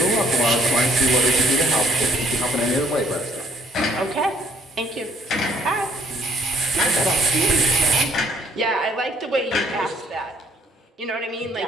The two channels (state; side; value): normal; both; correlation 0.63